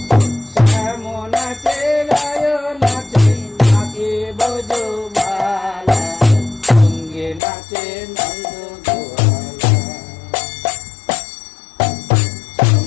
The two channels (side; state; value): right; drops out; at 7.4 s